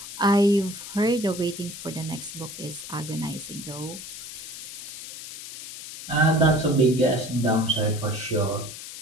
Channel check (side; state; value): left; noise; hiss, 11 dB below the sound